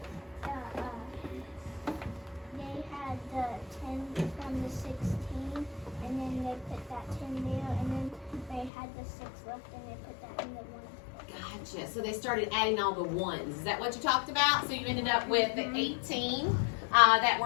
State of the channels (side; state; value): right; drops out; at 8.7 s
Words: they had the 10 from the 16, and then they put that 10 there, and then they had the 6 left, and they put that in the 1. Gotcha. So they started adding all the ones. Is that what you talked about? So you ended up with the 18 that